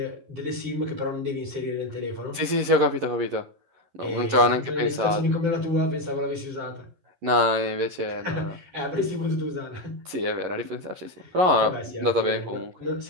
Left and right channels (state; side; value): late; left; 11 ms